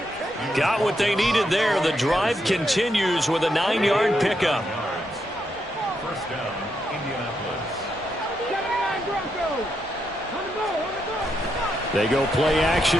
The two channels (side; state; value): both; normal; correlation 0.81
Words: Got what they needed there. The drive continues with a 9-yard pickup. First down, Indianapolis. They go play